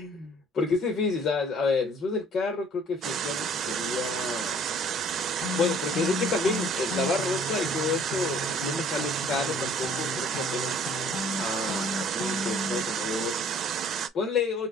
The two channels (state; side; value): normal; both; correlation 0.55